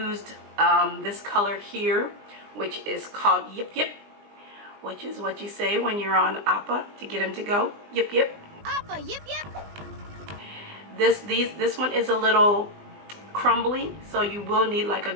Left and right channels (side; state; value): left; late; 20 ms